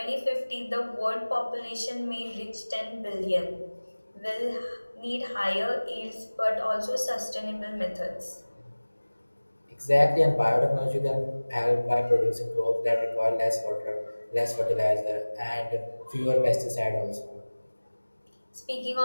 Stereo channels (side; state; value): both; inverted; correlation -1.00